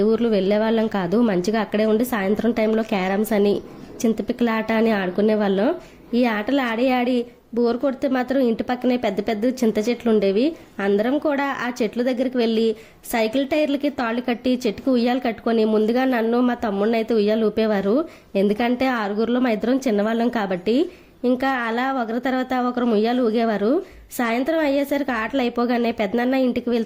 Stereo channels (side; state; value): both; identical; correlation 1.00